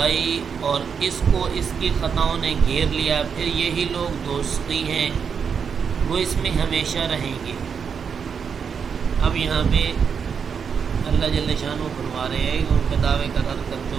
اور اس کو اس کی خطاؤں نے گھیر لیا، پھر یہی لوگ دوستی ہیں، وہ اس میں ہمیشہ رہیں گے۔ اب یہاں پہ اللہ جل شانہ فرما رہے ہیں ان کے دعوے کا رد کرتے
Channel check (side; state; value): left; quieter; 6.6 dB